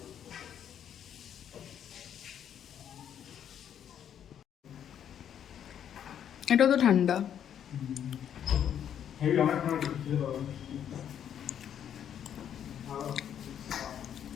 এটা তো ঠান্ডা,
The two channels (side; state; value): right; quieter; 9.4 dB